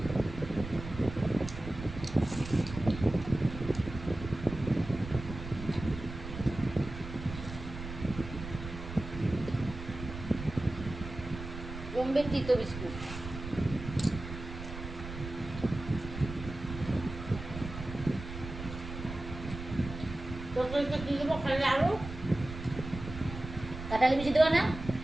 বোম্বে তিতো বিস্কুট। তরকারিতে কি দেবো খালি আলু কাঁঠালি বিচি দেবো না?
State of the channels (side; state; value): right; noise; rumble, 10 dB below the sound